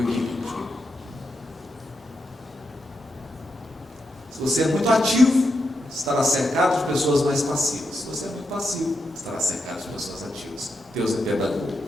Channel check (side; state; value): both; normal; correlation 0.85